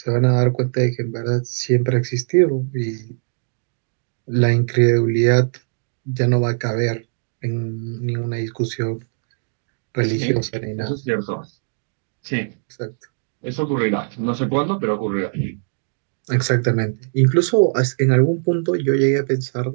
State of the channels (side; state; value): left; silent; digital silence